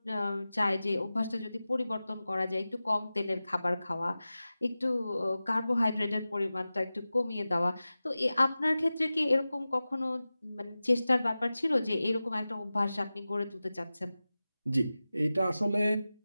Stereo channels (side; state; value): both; inverted; correlation -0.96